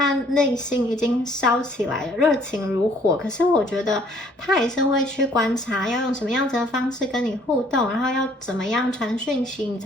内心已经烧起来了，热情如火，可是我觉得他还是会去观察要用什么样子的方式跟你互动，然后要怎么样传讯息你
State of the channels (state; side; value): normal; both; correlation 0.60